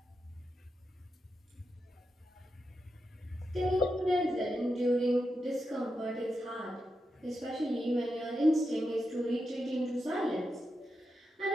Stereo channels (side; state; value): both; normal; correlation 0.87